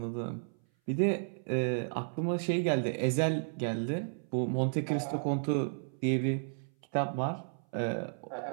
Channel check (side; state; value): left; silent; 56 dB below the other